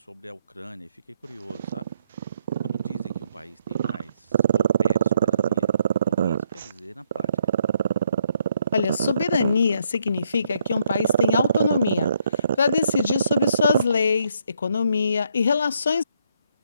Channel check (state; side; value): inverted; both; correlation -0.72